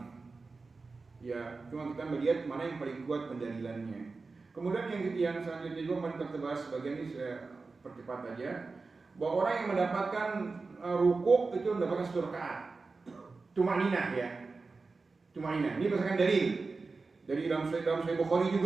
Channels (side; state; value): left; quieter; 4.0 dB